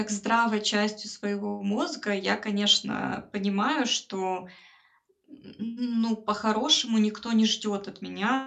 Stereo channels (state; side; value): identical; both; correlation 1.00